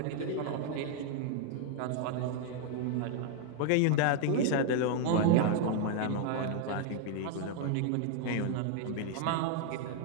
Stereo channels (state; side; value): different; both; correlation 0.00